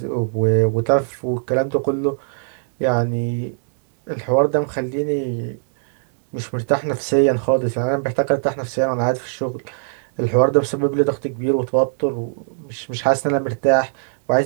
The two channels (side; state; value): left; silent; digital silence